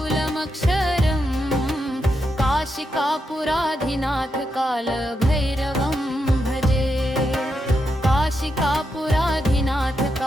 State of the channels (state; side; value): normal; both; correlation 0.84